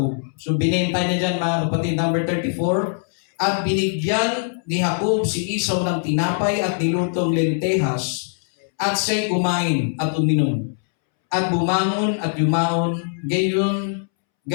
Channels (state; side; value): silent; right; 65 dB below the other